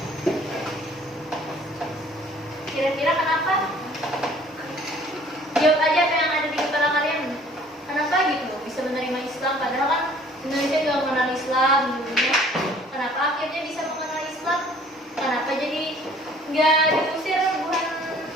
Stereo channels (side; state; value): both; normal; correlation 0.55